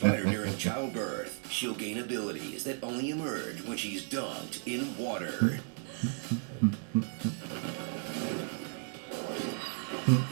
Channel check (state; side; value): silent; left; 55 dB below the other